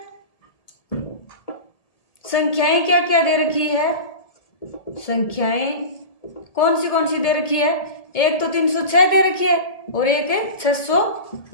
संख्याएं क्या क्या दे रखी है, संख्याएं कौन सी दे रखी है, एक तो 306 दे रखी है और एक है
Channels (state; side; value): late; right; 1.8 ms